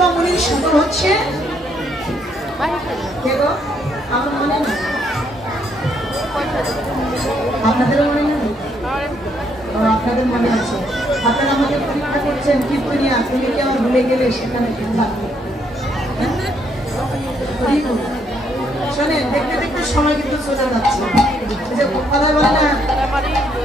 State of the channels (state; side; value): normal; both; correlation 0.72